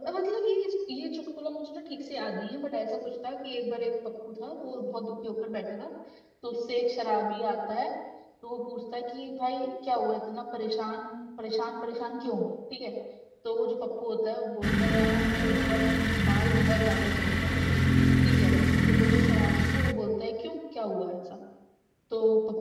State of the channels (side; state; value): both; identical; correlation 1.00